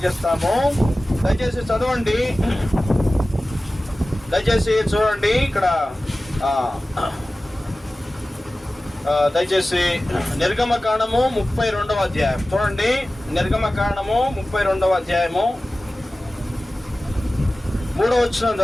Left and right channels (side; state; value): both; normal; correlation 0.96